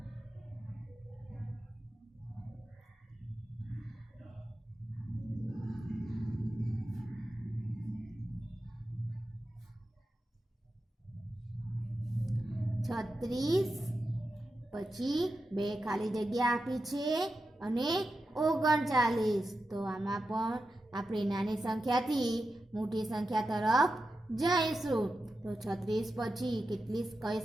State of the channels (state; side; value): normal; both; correlation 0.90